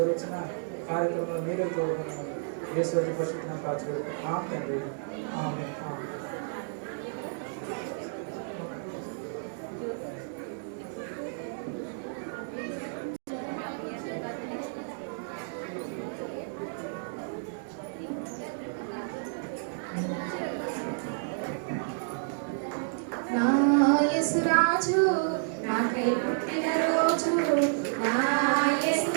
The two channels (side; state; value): left; silent; digital silence